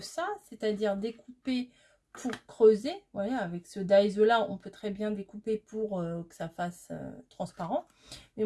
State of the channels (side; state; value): both; identical; correlation 1.00